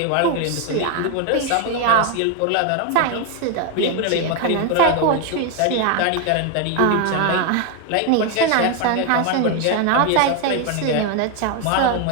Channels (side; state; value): both; different; correlation 0.01